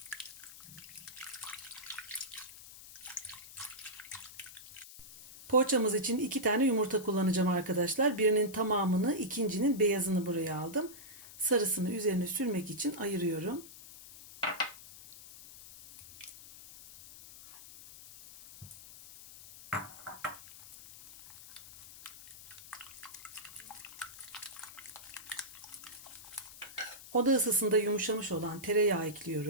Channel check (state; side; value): noise; left; hiss, 16 dB below the sound